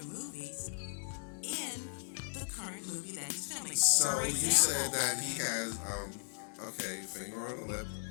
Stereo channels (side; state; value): right; silent; digital silence